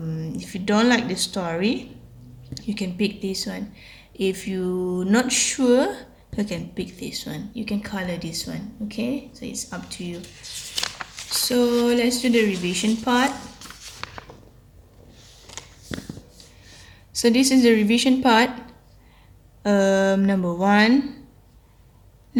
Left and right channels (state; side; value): identical; both; correlation 1.00